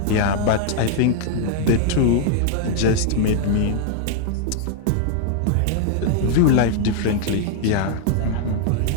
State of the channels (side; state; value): both; different; correlation 0.00